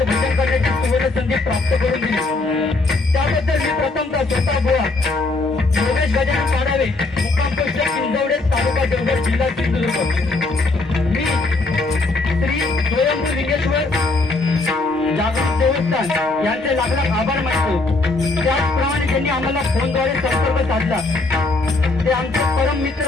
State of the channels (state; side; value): quieter; right; 3.3 dB